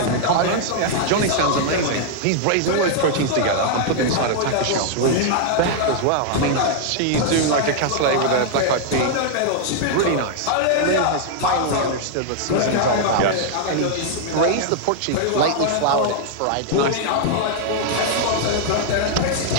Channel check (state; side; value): different; both; correlation -0.01